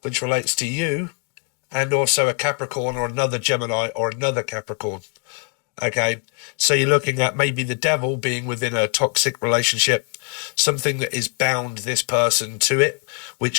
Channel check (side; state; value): right; quieter; 31.2 dB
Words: which relates to you, and also a Capricorn or another Gemini or another Capricorn. Okay, so you're looking at maybe the devil being within a toxic relationship, something that is bound this person to it,